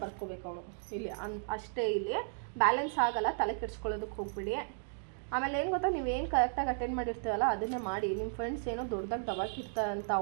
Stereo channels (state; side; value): silent; left; digital silence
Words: ಬರ್ಕೋಬೇಕು ಅವನು ಇಲ್ಲಿ. ಅಷ್ಟೇ, ಇಲ್ಲಿ ಬ್ಯಾಲೆನ್ಸ್ ಆಗಲ್ಲ, ತಲೆ ಕೆಡ್ಸ್ಕೊಳ್ಳೋದಕ್ಕೆ ಹೋಗ್ಬಿಡಿ. ಆಮೇಲೆ ಏನು ಗೊತ್ತಾ, ನೀವೇನು ಕರೆಕ್ಟಾಗಿ ಅಟೆಂಡ್ ಮಾಡಿರ್ತೀವಲ್ಲ ಅದನ್ನೇ ಮಾಡಿ. ನಿಮ್ಮ ಫ್ರೆಂಡ್ಸ್ ಏನೋ ದೊಡ್ಡದಾಗಿ ದಬಾಕಿರ್ತಾರಂತ